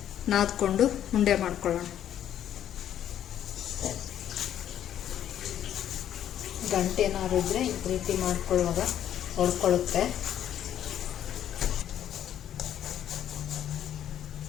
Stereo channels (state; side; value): quieter; right; 10.6 dB